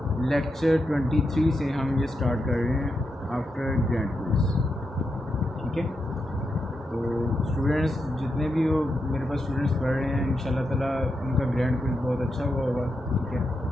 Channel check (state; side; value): normal; both; correlation 0.85